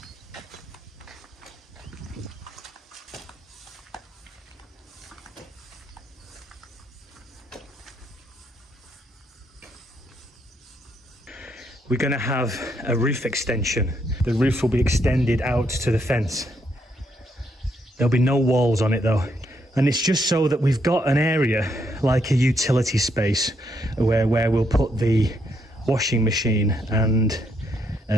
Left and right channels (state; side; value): normal; both; correlation 0.75